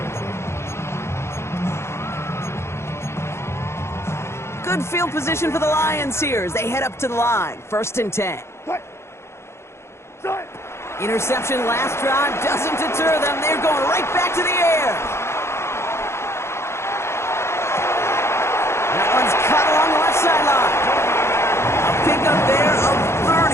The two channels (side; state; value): right; late; 0.13 ms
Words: Good field position for the Lions here as they head up to the line. 1st and 10. Interception last drive doesn't deter them. They're going right back to the air. That one's cut along the left sideline. A pickup there of